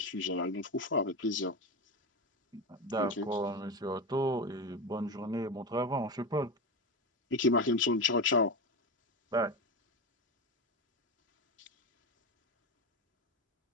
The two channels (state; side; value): normal; both; correlation 0.19